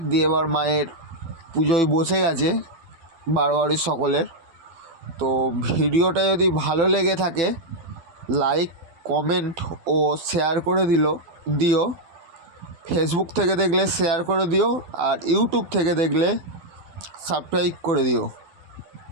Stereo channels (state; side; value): late; left; 12 ms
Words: দিয়ে এবার মায়ের পুজোয় বসে গেছে বাড়ির সকলের। তো ভিডিওটা যদি ভালো লেগে থাকে লাইক, কমেন্ট ও শেয়ার করে দিও। ফেসবুক থেকে দেখলে শেয়ার করে দিও, আর ইউটিউব থেকে দেখলে সাবস্ক্রাইব করে দিও।